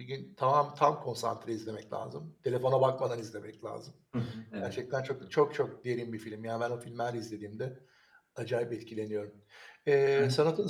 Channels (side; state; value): both; identical; correlation 1.00